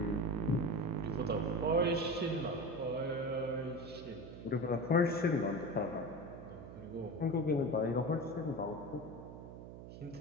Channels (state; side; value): noise; right; hum, 12 dB below the sound